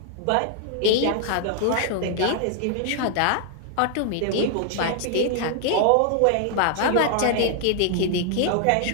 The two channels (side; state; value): both; different; correlation 0.00